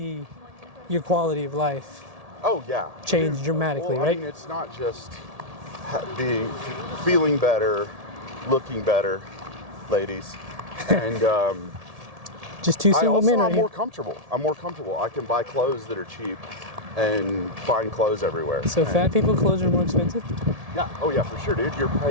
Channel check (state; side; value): late; left; 1.7 ms